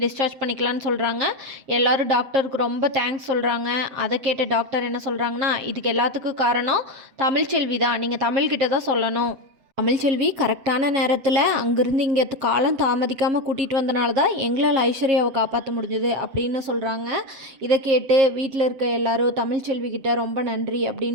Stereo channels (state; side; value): late; left; 7.7 ms